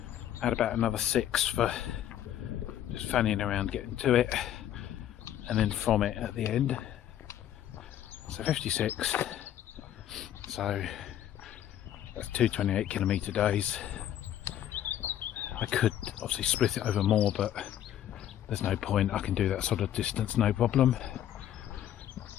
add about another 6 for just fanning around getting to it, and then from it at the end. So 56, so that's 2 28 kilometre days. I could obviously split it over more, but there's no point. I can do that sort of distance, no problem.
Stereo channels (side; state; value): right; quieter; 11.3 dB